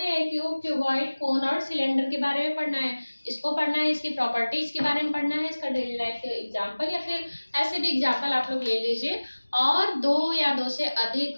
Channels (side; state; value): both; inverted; correlation -1.00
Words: हैं, क्यूब, क्यूबॉइड, कोन और सिलेंडर के बारे में पढ़ना है। इसको पढ़ना है, इसकी प्रॉपर्टीज के बारे में पढ़ना है, इसका डेली लाइफ एग्जांपल या फिर ऐसे भी एग्जांपल आप लोग ले लीजिए। और दो या दो से